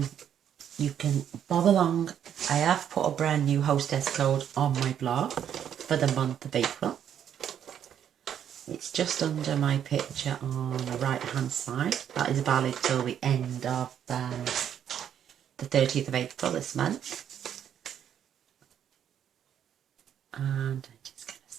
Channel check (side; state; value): left; quieter; 9.3 dB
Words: you can bob along. I have put a brand new hostess code on my blog for the month of April. It's just under my picture on the right hand side. That is valid till the end of the 30th of April this month. And I'm just going